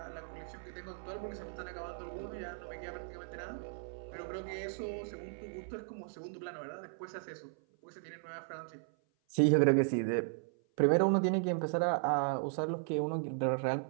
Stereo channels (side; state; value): left; silent; 54 dB below the other